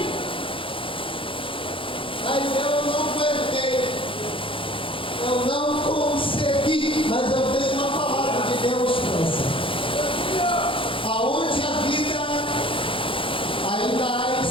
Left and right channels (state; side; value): late; right; 0.25 ms